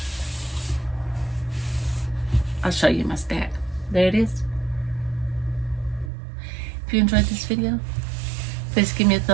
I'll show you my stack. There it is. If you enjoyed this video, please give me a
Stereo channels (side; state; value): left; drops out; at 6.1 s